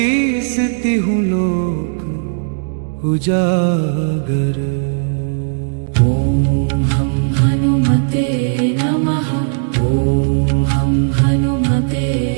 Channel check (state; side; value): silent; left; digital silence